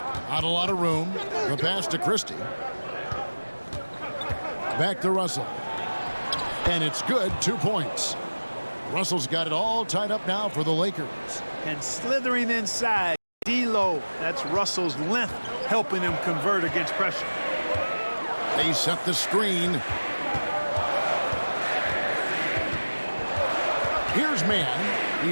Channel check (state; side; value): inverted; both; correlation -1.00